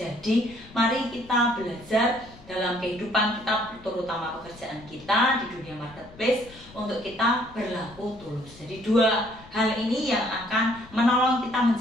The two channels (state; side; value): noise; left; rumble, 22 dB below the sound